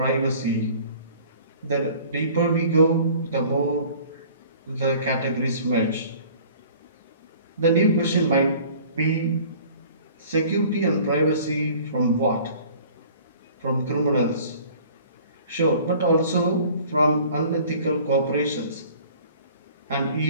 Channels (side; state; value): both; inverted; correlation -0.49